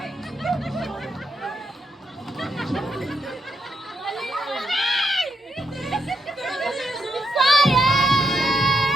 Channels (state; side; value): normal; both; correlation 0.81